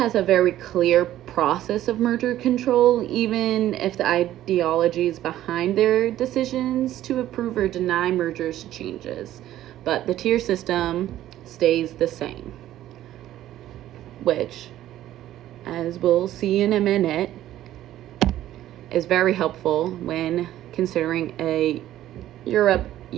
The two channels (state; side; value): quieter; left; 13.3 dB